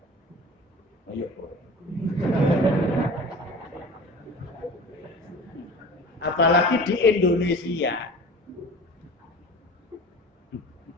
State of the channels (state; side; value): normal; both; correlation 0.39